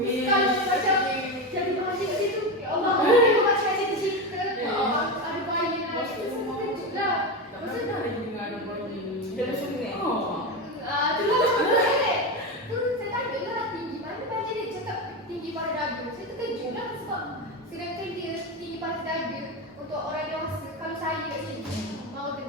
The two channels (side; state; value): both; normal; correlation 0.17